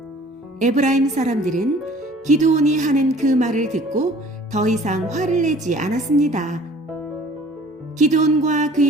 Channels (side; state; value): both; normal; correlation 0.51